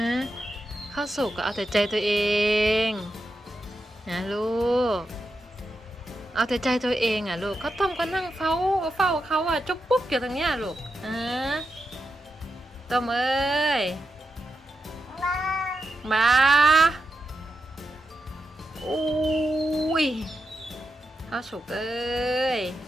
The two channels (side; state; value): both; normal; correlation 0.87